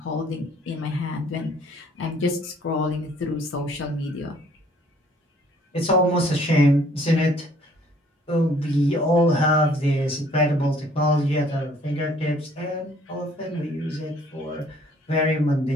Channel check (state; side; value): normal; both; correlation 0.59